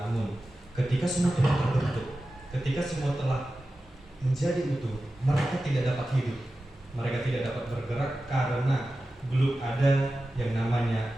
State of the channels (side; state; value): both; normal; correlation 0.94